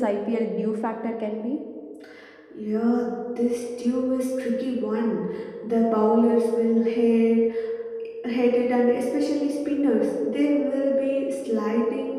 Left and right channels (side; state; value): both; identical; correlation 1.00